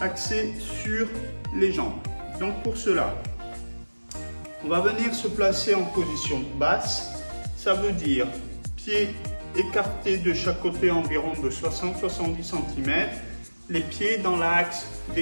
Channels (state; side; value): inverted; both; correlation -1.00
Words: axé sur les jambes. Donc pour cela, on va venir se placer en position basse. Ça veut dire pieds écartés de chaque côté environ de 60-70 cm, les pieds dans l'axe